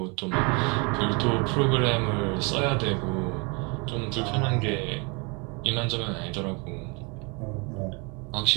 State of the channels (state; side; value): quieter; left; 31.2 dB